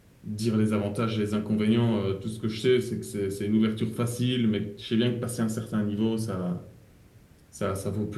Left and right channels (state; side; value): identical; both; correlation 1.00